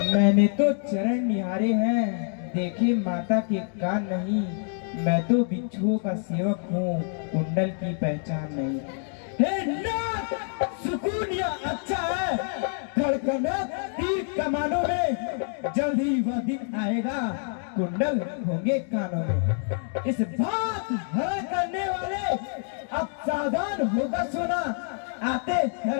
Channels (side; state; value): right; silent; 60 dB below the other